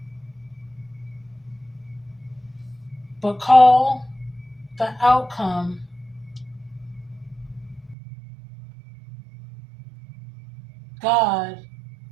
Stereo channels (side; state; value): left; drops out; at 8.0 s